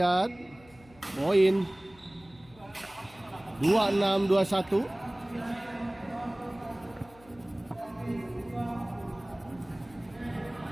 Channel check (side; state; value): left; noise; hum, 25 dB below the sound